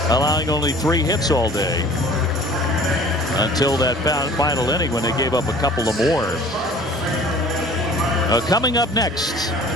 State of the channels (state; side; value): normal; both; correlation 0.47